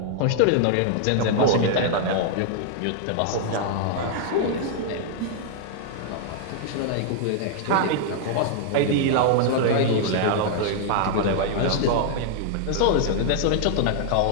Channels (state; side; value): different; both; correlation -0.01